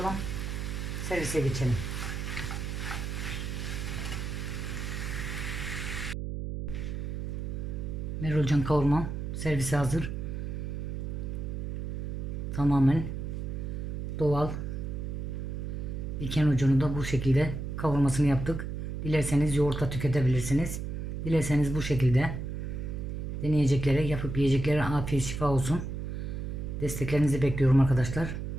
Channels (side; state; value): right; noise; hum, 4 dB below the sound